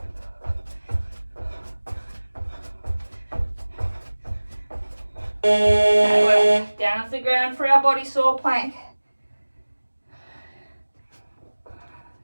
Okay, we're down off the ground for our body saw plank.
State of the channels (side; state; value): both; inverted; correlation -1.00